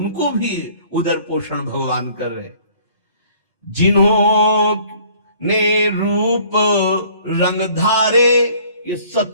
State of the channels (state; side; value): inverted; both; correlation -0.55